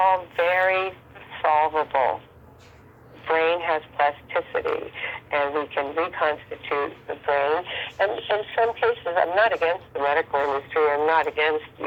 very solvable. Brain has plasticity, and we can reconstitute the brain. And in some cases, I'm not against the medical industry. I'm not against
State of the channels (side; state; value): both; identical; correlation 1.00